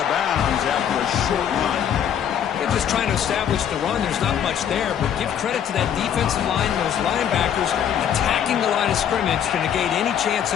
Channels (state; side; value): quieter; right; 9.0 dB